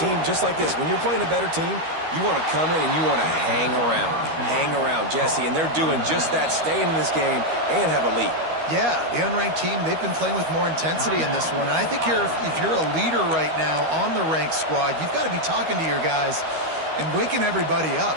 team, just like this, when you're playing a better team, you want to come in and you want to hang around. Hang around, Jesse. And they're doing just that, staying in this game and have a lead. Yeah, the unranked team, they've been playing with more intensity in this one. And I think if you're a leader right now on the ranked squad, you've got to be talking to your guys and waking everybody up.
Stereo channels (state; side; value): late; left; 13 ms